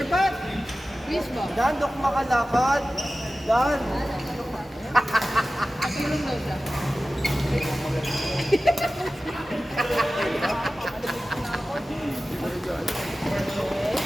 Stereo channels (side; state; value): both; normal; correlation 0.95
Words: Pat, please ba? Dan, dok makalakad. Dan. Patulong daw siya.